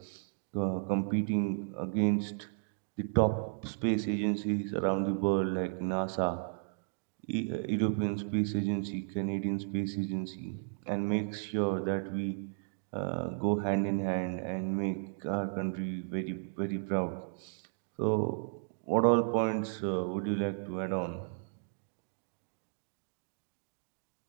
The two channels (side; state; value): left; silent; digital silence